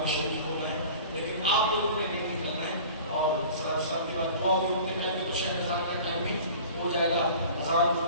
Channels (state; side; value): inverted; both; correlation -0.42